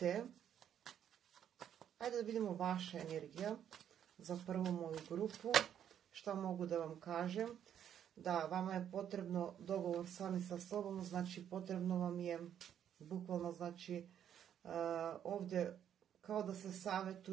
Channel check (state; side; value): quieter; left; 9.5 dB